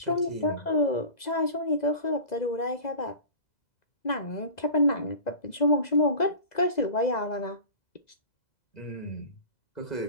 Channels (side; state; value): right; late; 2.0 ms